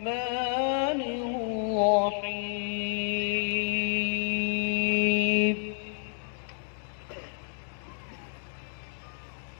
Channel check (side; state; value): right; silent; 58 dB below the other